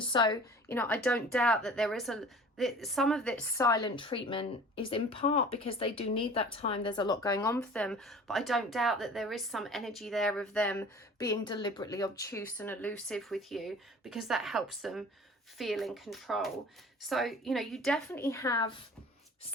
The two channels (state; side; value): normal; both; correlation 0.44